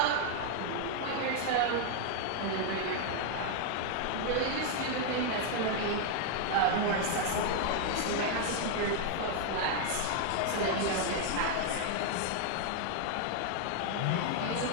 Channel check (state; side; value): different; both; correlation 0.00